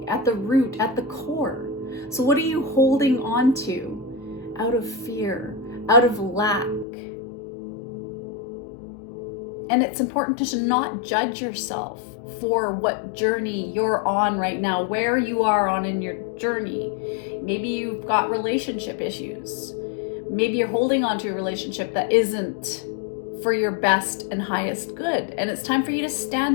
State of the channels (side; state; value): right; drops out; at 6.9 s